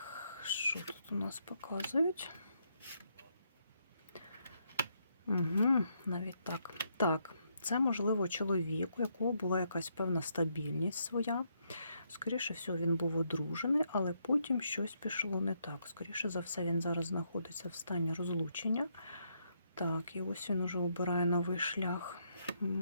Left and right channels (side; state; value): both; inverted; correlation -0.76